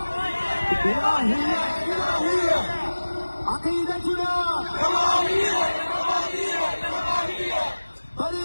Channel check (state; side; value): inverted; both; correlation -1.00